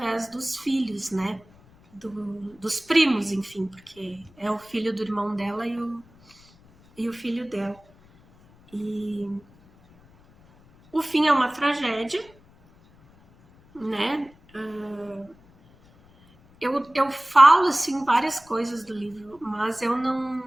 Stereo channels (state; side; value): noise; left; rumble, 28 dB below the sound